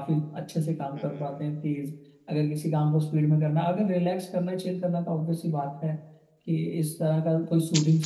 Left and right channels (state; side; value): identical; both; correlation 1.00